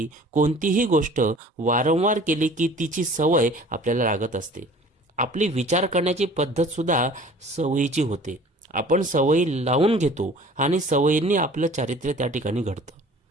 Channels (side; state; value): both; normal; correlation 0.47